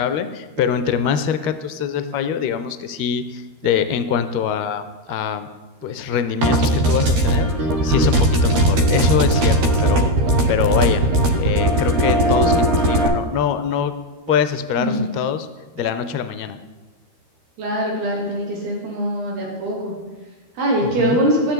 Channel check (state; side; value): late; left; 13 ms